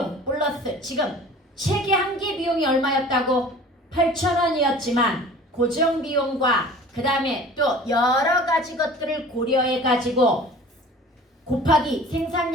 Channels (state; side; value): normal; both; correlation 0.44